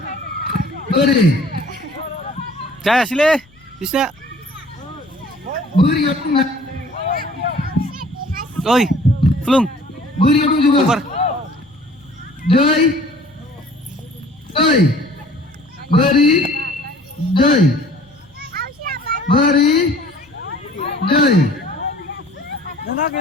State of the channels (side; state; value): left; noise; rumble, 30 dB below the sound